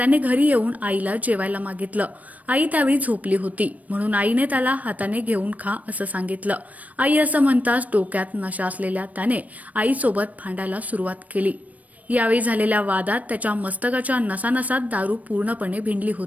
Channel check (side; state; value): left; late; 0.071 ms